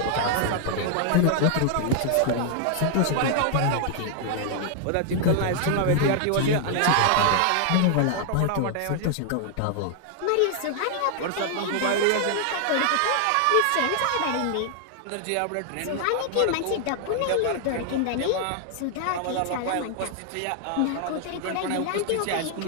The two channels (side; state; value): both; different; correlation 0.00